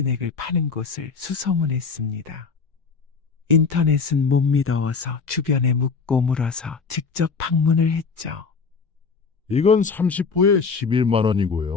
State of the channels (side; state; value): right; quieter; 5.1 dB